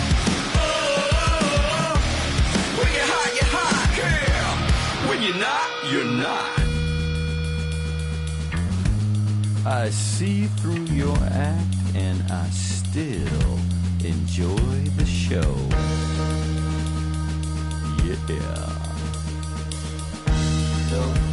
oh, when you're hot, yeah. When you're not, you're not. I see through your act and I still enjoy the show. Yeah.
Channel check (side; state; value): both; identical; correlation 1.00